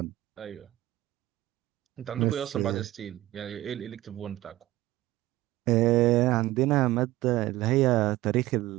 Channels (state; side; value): quieter; left; 16.6 dB